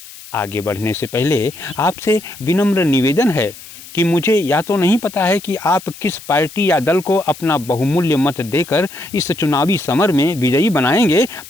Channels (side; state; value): left; noise; hiss, 17 dB below the sound